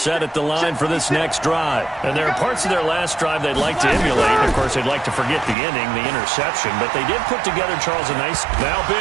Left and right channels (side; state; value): left; drops out; at 5.6 s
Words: at the line for this next drive. And there are parts of their last drive they'd like to emulate. Of course, they'd like to forget the inning, the interception. But they did put together, Charles, a nice